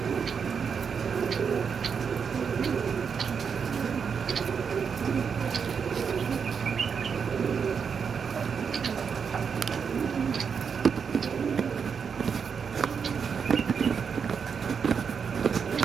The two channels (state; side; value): quieter; left; 6.4 dB